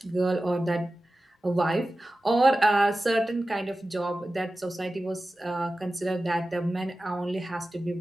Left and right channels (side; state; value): both; normal; correlation 0.95